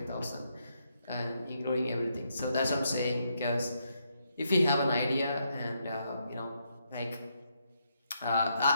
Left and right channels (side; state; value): both; inverted; correlation -0.78